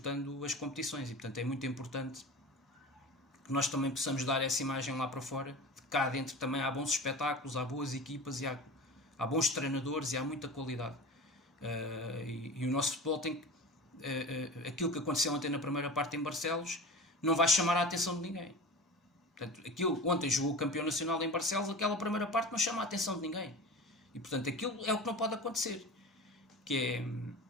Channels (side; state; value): both; normal; correlation 0.33